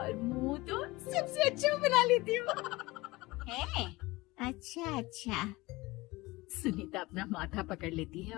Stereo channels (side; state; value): right; quieter; 21.2 dB